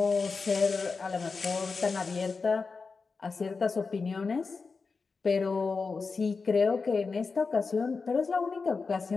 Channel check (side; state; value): right; quieter; 4.6 dB